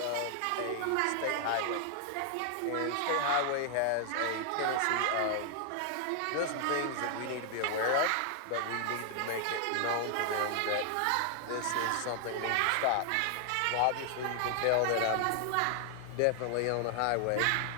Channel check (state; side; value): different; both; correlation 0.00